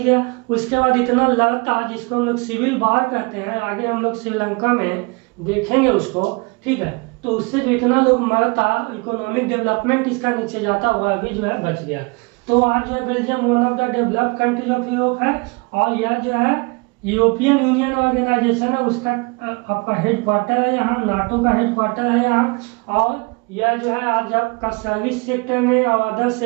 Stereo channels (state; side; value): quieter; left; 30.2 dB